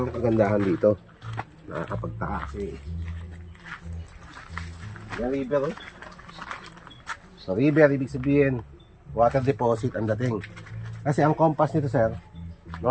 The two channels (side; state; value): both; identical; correlation 1.00